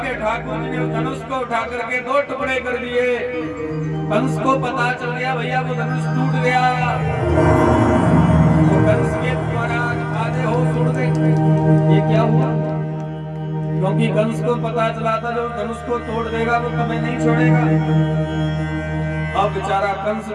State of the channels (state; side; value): identical; both; correlation 1.00